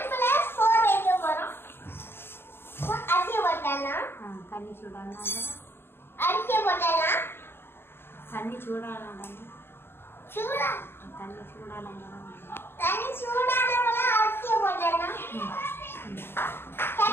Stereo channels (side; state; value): right; late; 0.11 ms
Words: வைக்க போறோம். அரிசி போட்டலாம். தண்ணி சூடானா அரிசி போட்டலாம். தண்ணி சூடானா சூடா தண்ணி சூடானா தண்ணி சூடானவங்க அரிசி போட்டலாம்.